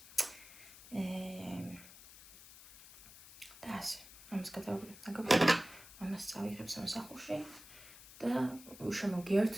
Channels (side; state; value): left; noise; hiss, 18 dB below the sound